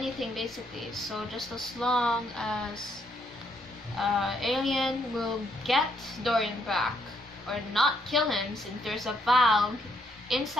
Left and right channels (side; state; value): both; normal; correlation 0.73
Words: basically. So just as long as Alien will get Dorian back or not kill him, since there's a valve